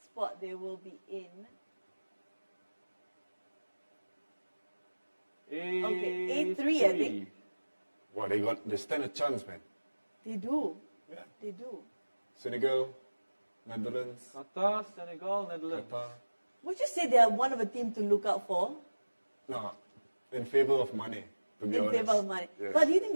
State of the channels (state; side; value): inverted; both; correlation -1.00